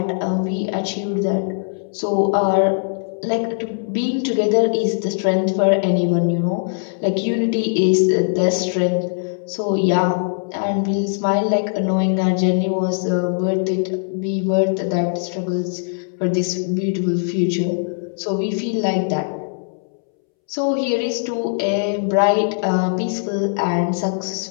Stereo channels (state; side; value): silent; right; 65 dB below the other